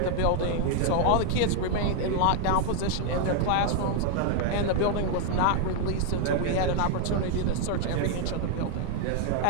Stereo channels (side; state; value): both; different; correlation 0.00